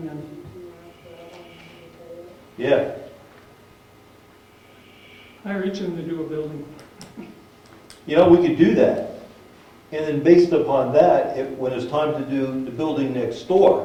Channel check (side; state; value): both; identical; correlation 1.00